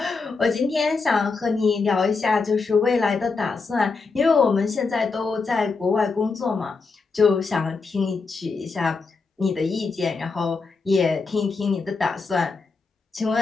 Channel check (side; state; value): right; quieter; 4.4 dB